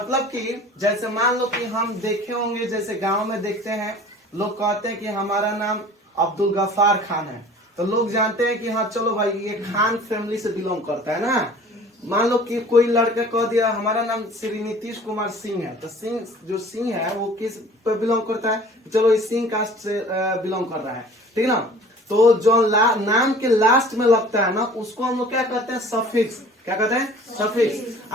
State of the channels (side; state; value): both; normal; correlation 0.47